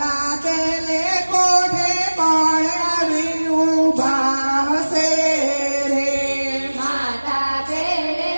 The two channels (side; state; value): both; inverted; correlation -1.00